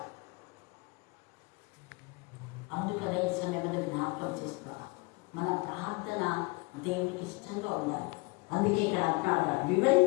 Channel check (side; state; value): right; quieter; 27.2 dB